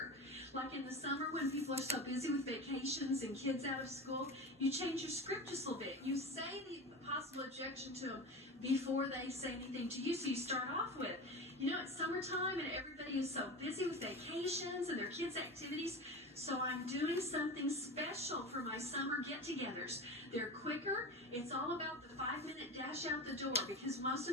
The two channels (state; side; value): normal; both; correlation 0.27